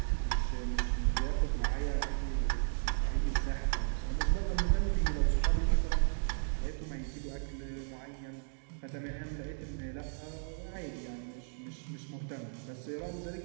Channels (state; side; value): silent; left; digital silence